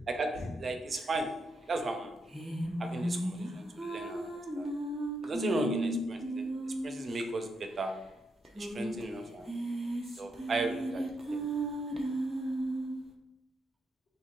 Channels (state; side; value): normal; both; correlation 0.81